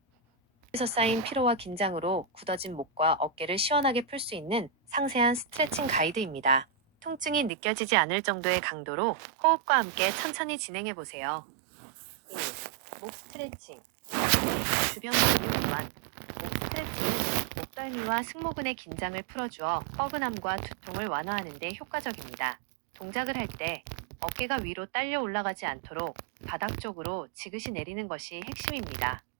에서 쌓인 피로와 긴장으로 굳어진 목과 어깨를 시원하게 풀 수 있는 상세한 스트레칭 가이드입니다. 통증이 느껴지지 않을 정도의 강도로 호흡과 함께 천천히 진행해 보세요. 1. 목 스트레칭. 및 주변 근육 이완. 목 스트레칭은 목덜미와 승모근의 긴장을 풀어주어 뻐근함과 두통을 완화하는 데 효과적입니다. 동작을 할 때 어깨가 위로 딸려 올라가지 않도록 바닥 쪽으로 지그시 내리는 것이 핵심입니다.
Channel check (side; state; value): left; drops out; at 7.5 s